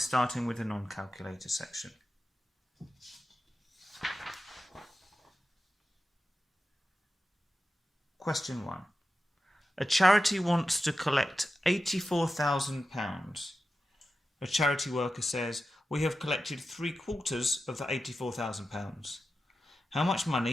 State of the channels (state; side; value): normal; both; correlation 0.92